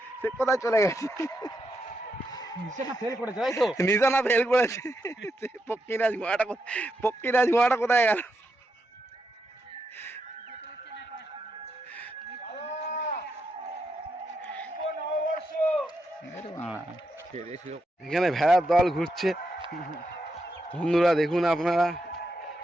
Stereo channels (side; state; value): both; normal; correlation 0.83